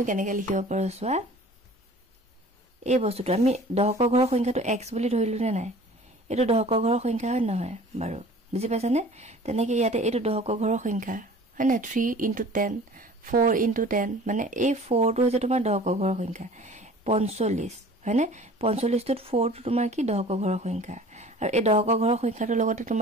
কেনেকৈ লিখিব পাৰো চোৱা এই বস্তুটো আমি দশকৰ ঘৰৰ সংখ্যাটো x বুলি ধৰিলো নে নাই এটো দশকৰ ঘৰৰ সংখ্যা হয় নহয় বাৰু বুজি পাইছানে তেনেকৈ ইয়াতে এটো দশকৰ ঘৰৰ সংখ্যা হয় না 3 into 10 4 into 10 মানে এই 4 টো হৈছে তোমাৰ দশকৰ ঘৰৰ সংখ্যা 45 হয়নে 45 টোত 4 টো তোমাৰ কি দশকৰ ঘৰৰ সংখ্যা আৰু এই দশকৰ ঘৰৰ সংখ্যাটোৰ লগতে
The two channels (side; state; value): both; normal; correlation 0.45